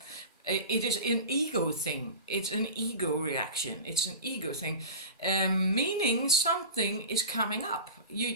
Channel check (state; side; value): inverted; both; correlation -0.31